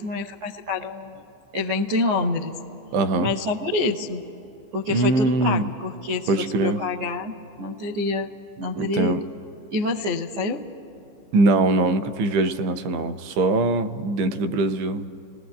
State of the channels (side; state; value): left; late; 15 ms